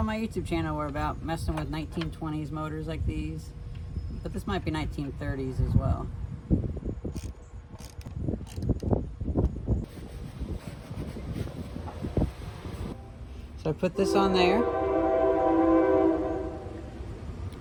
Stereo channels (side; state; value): both; identical; correlation 1.00